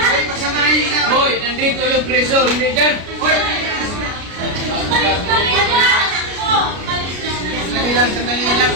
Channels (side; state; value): left; late; 33 ms